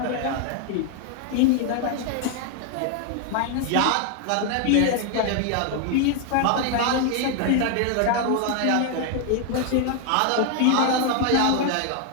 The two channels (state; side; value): different; both; correlation 0.00